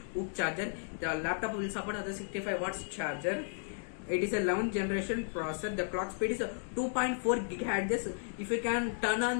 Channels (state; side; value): silent; right; 55 dB below the other